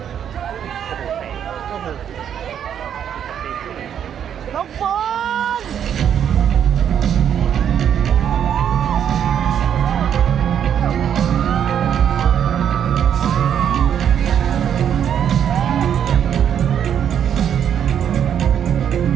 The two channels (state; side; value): quieter; left; 9.0 dB